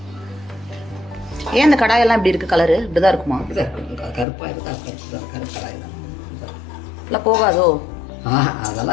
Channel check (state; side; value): drops out; right; at 4.2 s